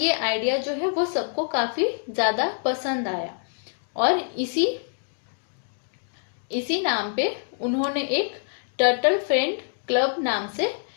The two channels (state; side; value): silent; right; digital silence